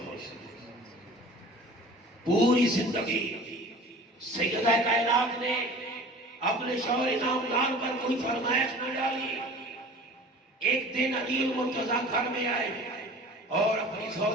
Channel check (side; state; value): both; normal; correlation 0.43